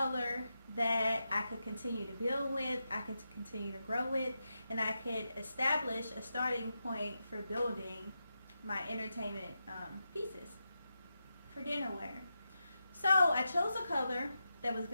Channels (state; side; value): inverted; both; correlation -0.88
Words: that I could continue to build with, I could continue to grow with, and I could establish a starting point for building my entertainment pieces for dinnerware. So I chose a color that was